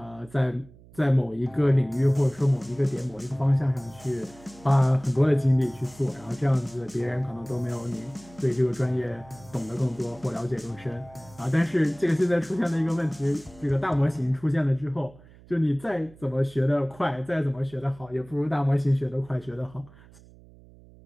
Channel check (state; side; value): noise; right; hum, 23 dB below the sound